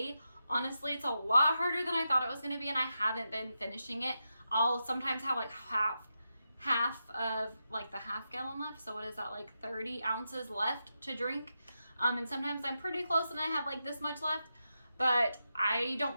Honestly, it's a lot harder than I thought it was going to be, and I haven't been finishing it. I'll sometimes have like half of like the half gallon left. So what is that, like 30 ounces left to drink? And sometimes I'm pretty close and I have like this much left. But I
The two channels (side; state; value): both; inverted; correlation -0.88